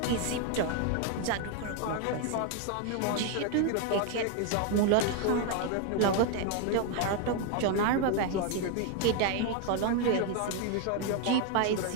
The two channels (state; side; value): different; both; correlation 0.01